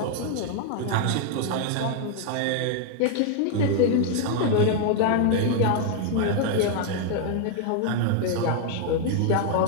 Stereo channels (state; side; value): different; both; correlation 0.00